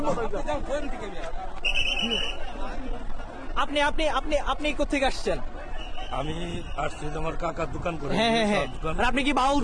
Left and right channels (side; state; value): both; identical; correlation 1.00